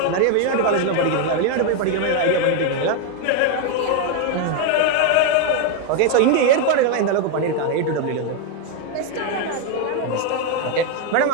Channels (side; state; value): both; different; correlation 0.01